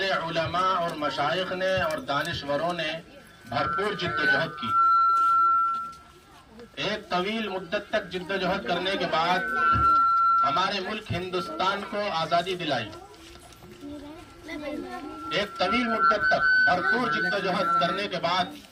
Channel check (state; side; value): identical; both; correlation 1.00